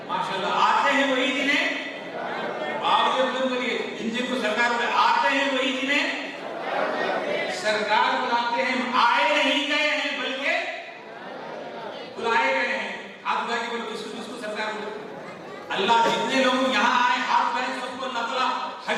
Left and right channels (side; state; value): both; identical; correlation 1.00